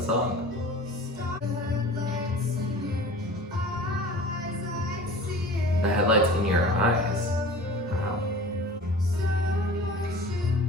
song. The headlights in your eyes. Wow.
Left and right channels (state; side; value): normal; both; correlation 0.41